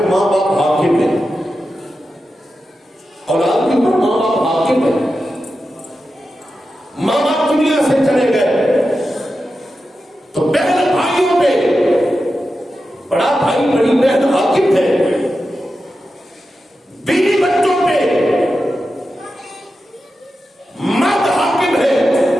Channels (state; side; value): normal; both; correlation 0.91